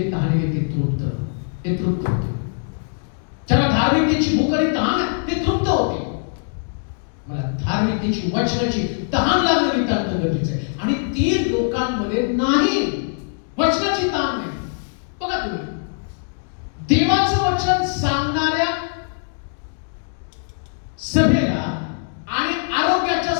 तहानले ते तृप्त होते. ज्याला धार्मिकतेची भूक आणि तहान आहे ते तृप्त होते. मला धार्मिकतेची वचनाची तहान लागणं नितांत गरजेचं आहे आणि ती लोकांमध्ये नाही. वचनाची तहान नाही. बघा तुम्ही देवाचं वचन सांगणाऱ्या सभेला आणि आरोग्याच्या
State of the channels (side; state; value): right; silent; digital silence